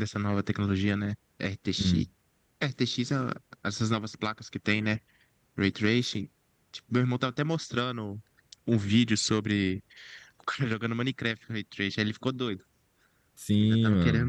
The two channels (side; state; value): both; identical; correlation 1.00